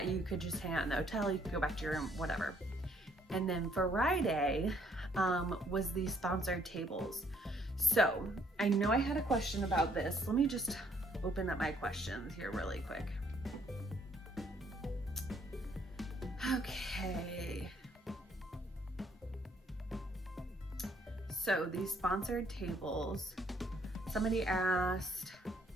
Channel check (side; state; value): both; normal; correlation 0.66